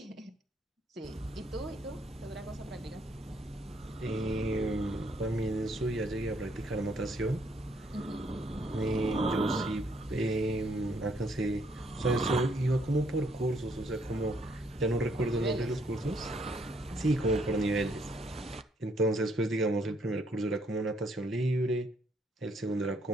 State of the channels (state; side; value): normal; both; correlation 0.69